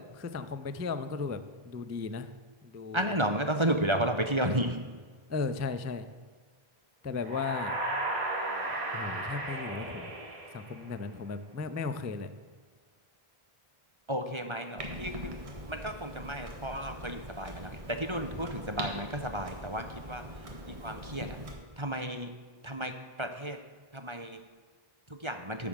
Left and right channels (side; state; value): left; late; 1.3 ms